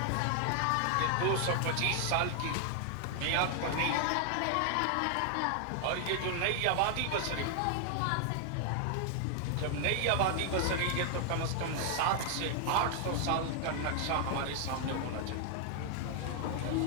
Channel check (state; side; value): different; both; correlation 0.00